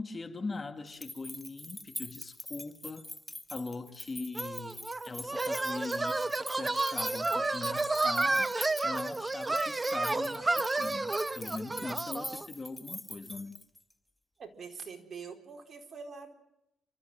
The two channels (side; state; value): both; normal; correlation 0.96